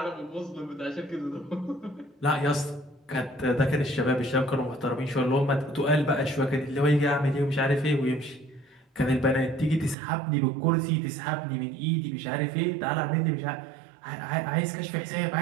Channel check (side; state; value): left; drops out; at 10.0 s